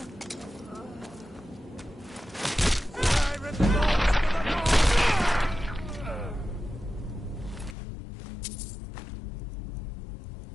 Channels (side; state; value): right; drops out; at 7.8 s